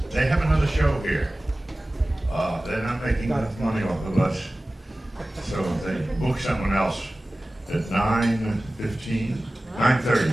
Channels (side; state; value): both; normal; correlation 0.97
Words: they have another show here. They're not making enough money off of us, so they book someone else at 9:30.